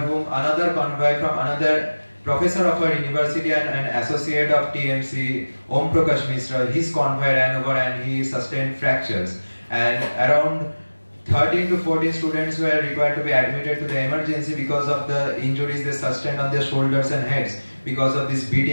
another convoy from another professor of our university and an associate of TMC, Om Prakash Mishra, his convoy ran over and he sustained fractures. And around 13 to 14 students were required to be admitted to the emergency because of the injuries they sustained on their shoulders and heads because of this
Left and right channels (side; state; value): both; inverted; correlation -1.00